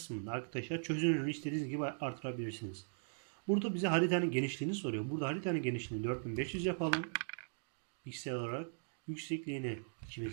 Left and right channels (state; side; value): silent; left; digital silence